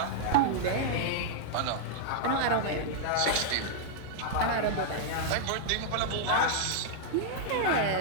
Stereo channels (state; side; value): different; both; correlation -0.01